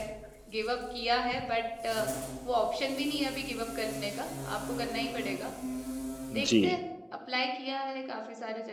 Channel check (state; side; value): identical; both; correlation 1.00